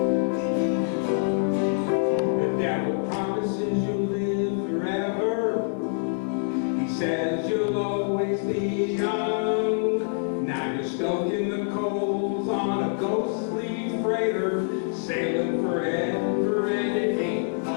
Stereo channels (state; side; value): silent; right; digital silence